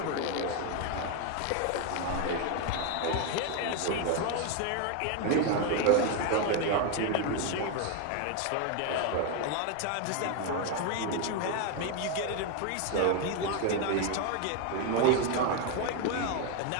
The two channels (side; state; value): both; different; correlation 0.01